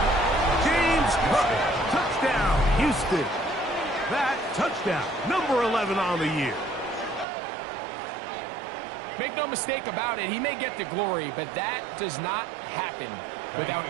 James Cook, touchdown, Houston. That touchdown, number 11 on the year. Make no mistake about it, he may get the glory, but that does not happen without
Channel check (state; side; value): drops out; left; at 7.2 s